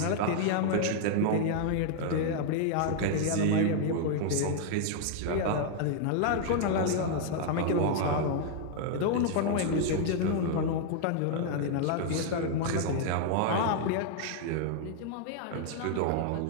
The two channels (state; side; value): different; both; correlation 0.00